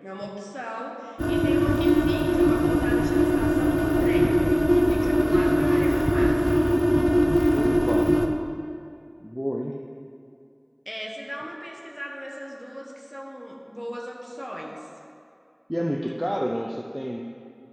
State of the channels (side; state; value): both; identical; correlation 1.00